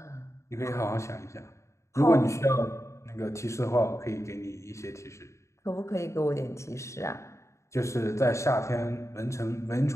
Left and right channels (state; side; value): late; right; 0.14 ms